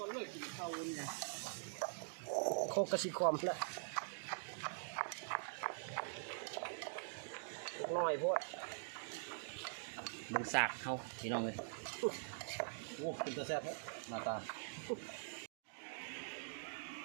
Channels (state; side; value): silent; left; digital silence